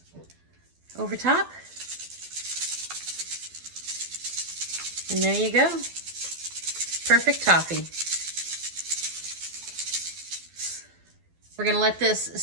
over top. And there you go. Perfect toffee. We're going to let this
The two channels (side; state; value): left; late; 12 ms